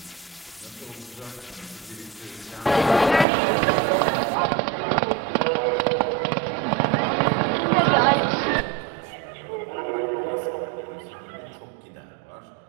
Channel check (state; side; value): drops out; left; at 3.2 s